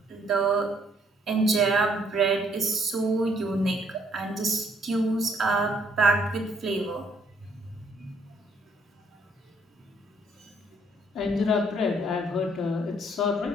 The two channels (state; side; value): normal; both; correlation 0.66